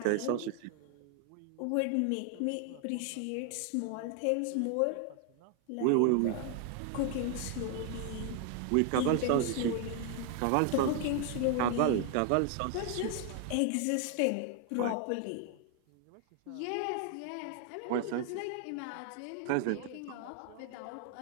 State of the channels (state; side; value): different; both; correlation 0.00